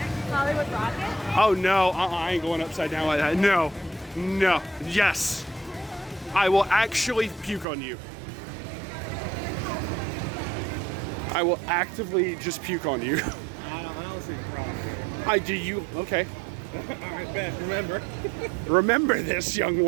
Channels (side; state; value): left; drops out; at 7.7 s